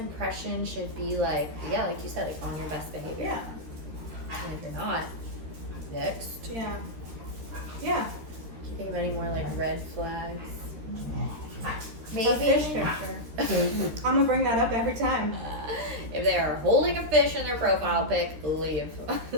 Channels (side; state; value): left; late; 13 ms